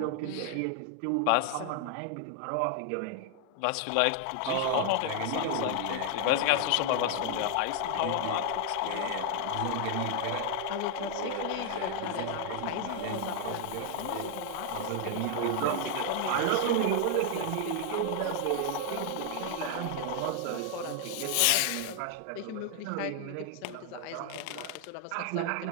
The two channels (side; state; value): both; different; correlation 0.00